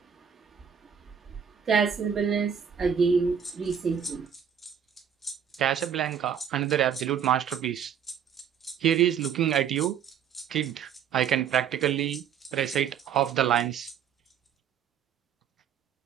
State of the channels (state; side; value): quieter; left; 8.1 dB